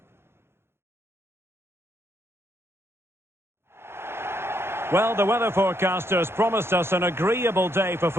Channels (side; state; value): left; late; 0.12 ms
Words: Well, the weather forecasters promised us an agreeable day for